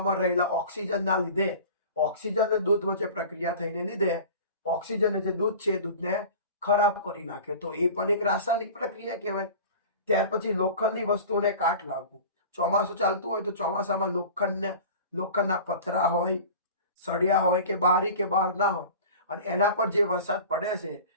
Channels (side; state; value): both; inverted; correlation -0.38